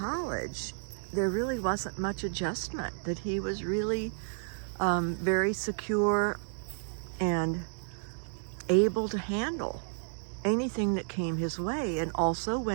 there really wasn't much adjustment, that he was really very secure and able to handle anything that came his way. And also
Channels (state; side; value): silent; left; digital silence